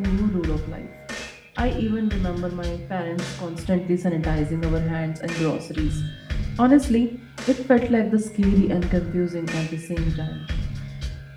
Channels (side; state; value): both; identical; correlation 1.00